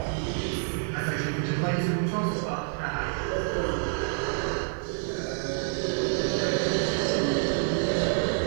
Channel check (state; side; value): silent; left; digital silence